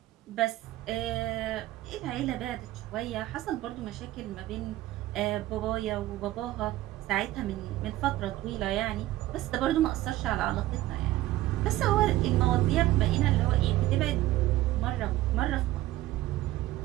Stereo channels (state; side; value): quieter; left; 15.7 dB